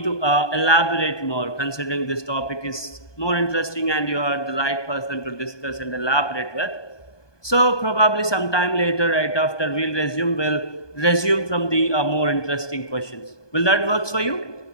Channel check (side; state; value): right; late; 1.2 ms